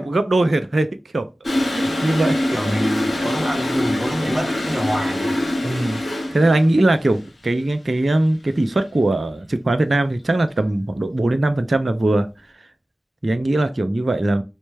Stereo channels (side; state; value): both; normal; correlation 0.96